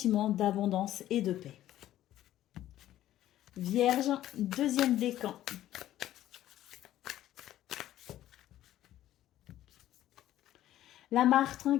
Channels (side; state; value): right; quieter; 13.2 dB